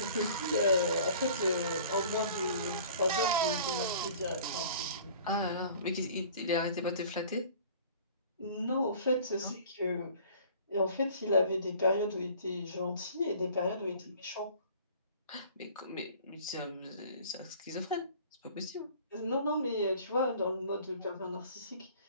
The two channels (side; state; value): both; inverted; correlation -0.48